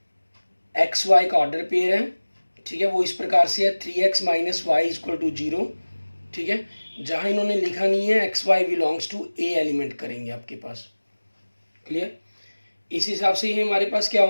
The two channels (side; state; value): both; inverted; correlation -1.00